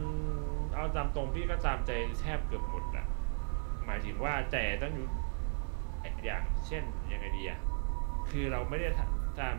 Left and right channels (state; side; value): silent; left; 54 dB below the other